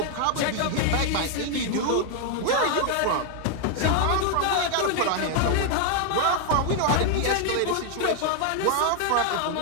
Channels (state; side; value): different; both; correlation 0.00